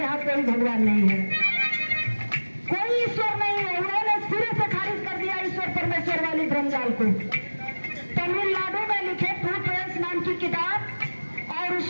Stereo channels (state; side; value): inverted; both; correlation -1.00